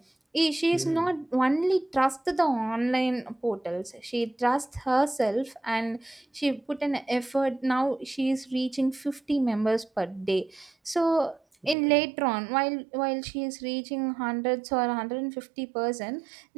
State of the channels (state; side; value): drops out; left; at 11.8 s